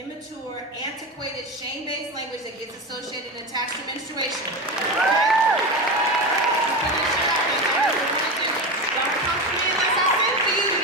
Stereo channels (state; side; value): normal; both; correlation 0.21